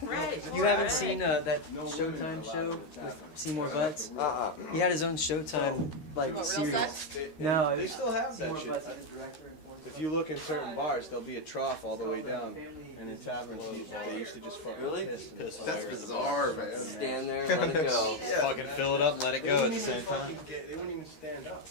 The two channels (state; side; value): late; right; 13 ms